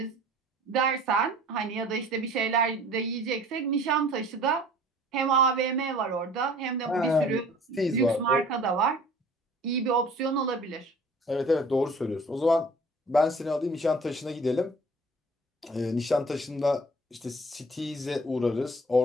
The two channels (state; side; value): normal; both; correlation 0.49